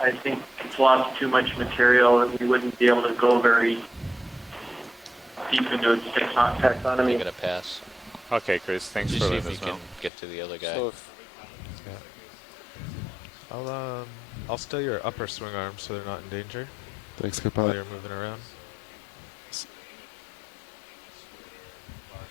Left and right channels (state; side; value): drops out; right; at 10.1 s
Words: think it's lost too much material and we wouldn't be able to go very deep into its taxonomy. I'm going to pass. Okay, Chris, thanks Just for see if letting we us know. can get to the other guy. So I'll steal your upper swing arms so they're not in danger. Thanks, While Capella. you're moving around.